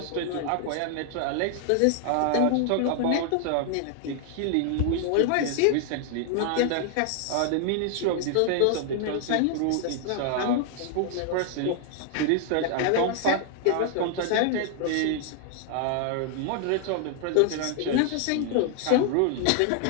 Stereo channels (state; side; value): different; both; correlation 0.00